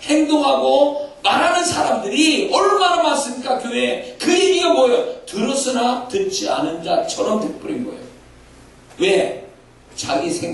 행동하고 말하는 사람들이 얼마나 많습니까? 교회에. 그 얘기가 뭐예요? 들었으나 듣지 않은 자처럼 돼버린 거예요. 왜? 자기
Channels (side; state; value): both; identical; correlation 1.00